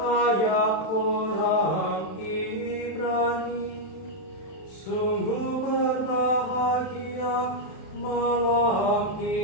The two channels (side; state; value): right; late; 31 ms